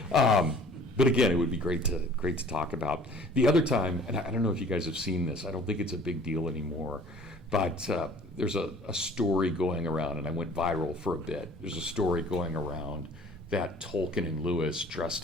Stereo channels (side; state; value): both; normal; correlation 0.51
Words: But again, it would be great to talk about. The other time, and I don't know if you guys have seen this, I don't think it's a big deal anymore, but there's a story going around, and I went viral for a bit. There's a story going around that Tolkien and Lewis